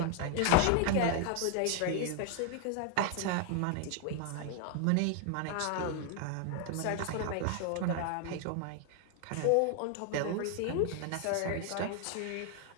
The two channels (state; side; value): different; both; correlation 0.00